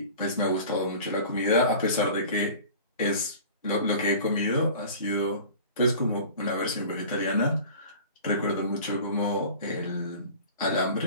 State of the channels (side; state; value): both; inverted; correlation -0.41